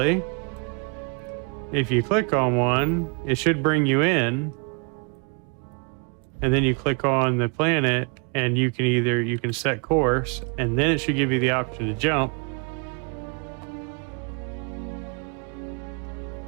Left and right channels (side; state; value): left; quieter; 36.3 dB